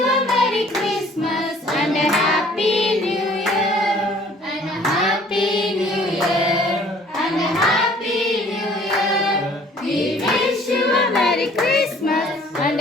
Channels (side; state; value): both; normal; correlation 0.55